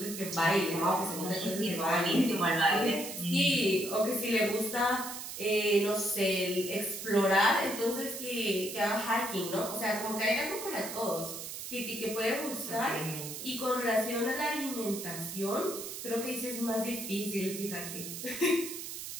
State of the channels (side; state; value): right; noise; hiss, 8 dB below the sound